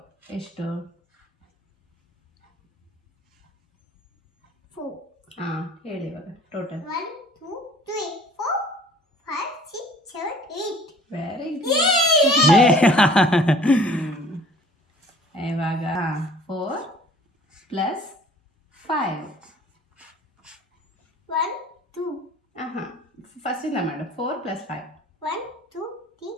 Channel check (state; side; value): normal; both; correlation 0.51